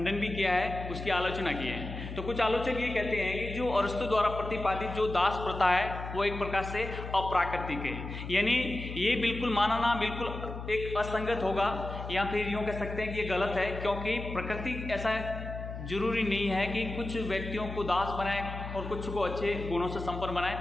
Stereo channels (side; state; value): left; noise; hum, 8 dB below the sound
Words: भी किया है, उसकी आलोचना की है। तो कुछ आलोचक ये कहते हैं कि जो अरस्तु द्वारा प्रतिपादित जो दास प्रथा है वो एक प्रकार से अप्राकृतिक है, यानी ये बिल्कुल मानना बिल्कुल एक असंगत होगा, या फिर यूँ कह सकते हैं कि ये गलत है, क्योंकि प्रकृति ऐसा जरूरी नहीं है कि कुछ व्यक्तियों को दास बनाए और कुछ को अच्छे गुणों से संपन्न